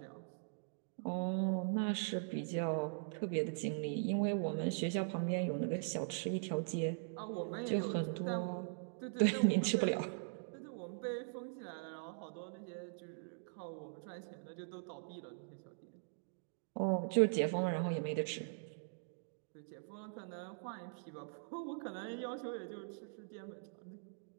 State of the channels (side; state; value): left; silent; digital silence